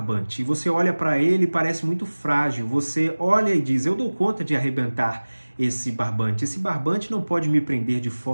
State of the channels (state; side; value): inverted; both; correlation -1.00